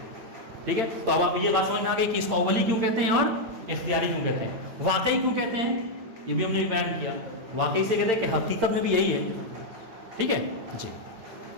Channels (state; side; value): late; left; 8.8 ms